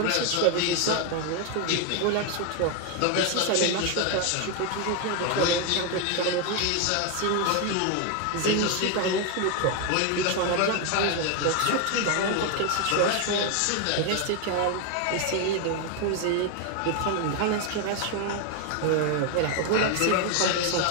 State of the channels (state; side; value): different; both; correlation 0.01